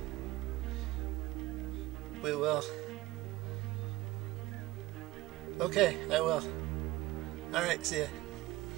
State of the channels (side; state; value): left; quieter; 18.7 dB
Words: We will. Okay, I will. Alright, see ya.